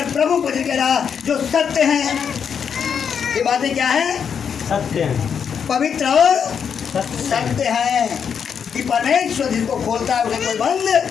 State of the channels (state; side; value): quieter; right; 7.2 dB